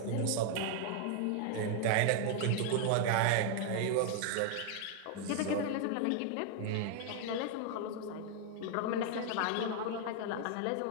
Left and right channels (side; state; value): both; different; correlation 0.00